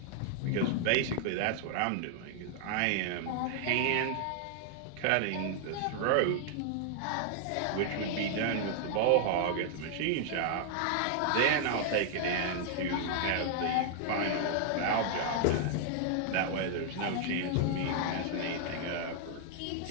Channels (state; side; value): different; both; correlation -0.01